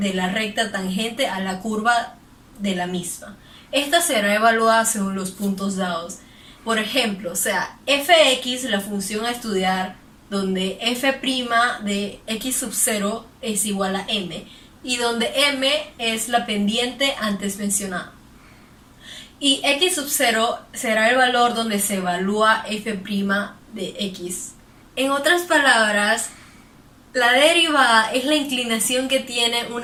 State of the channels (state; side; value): identical; both; correlation 1.00